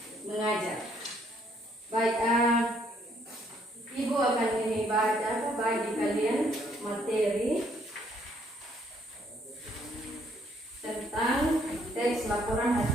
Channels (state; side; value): normal; both; correlation 0.68